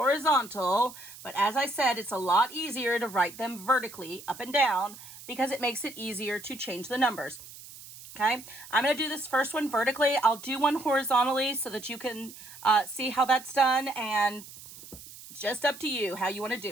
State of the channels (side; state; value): right; noise; hiss, 17 dB below the sound